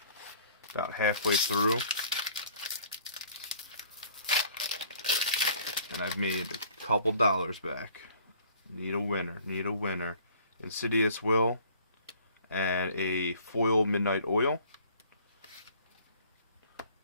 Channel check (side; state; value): both; inverted; correlation -0.54